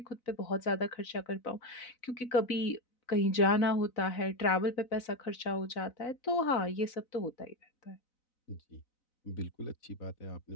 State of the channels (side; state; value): right; late; 4.0 ms